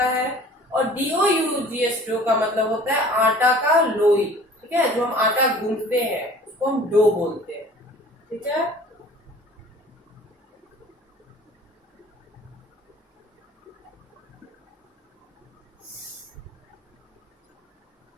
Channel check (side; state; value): both; normal; correlation 0.48